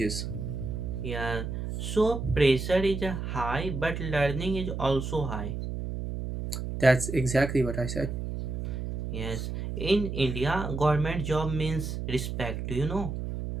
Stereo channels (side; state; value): right; noise; hum, 4 dB below the sound